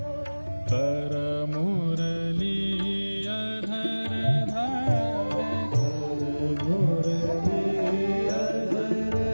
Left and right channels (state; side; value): inverted; both; correlation -1.00